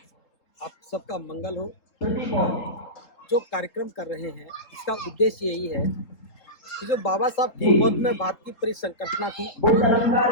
आप सबका मंगल हो। जो कार्यक्रम कर रहे हैं इसका उद्देश्य यही है कि जो बाबा साहब की मौत में भारत की परिसंकटना थी वो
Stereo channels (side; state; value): right; late; 3.8 ms